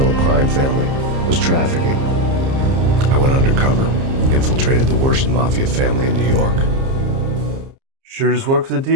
crime family, was trafficking. I went undercover. Infiltrated the worst mafia family in New York. Sure just work for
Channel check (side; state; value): left; late; 30 ms